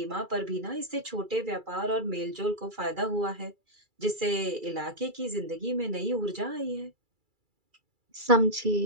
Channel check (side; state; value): left; late; 2.3 ms